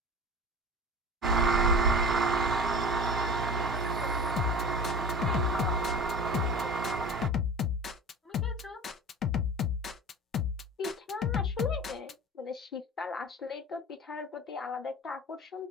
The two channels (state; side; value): normal; both; correlation 0.37